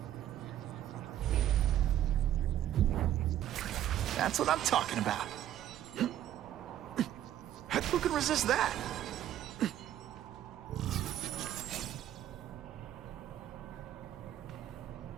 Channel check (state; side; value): quieter; left; 11.8 dB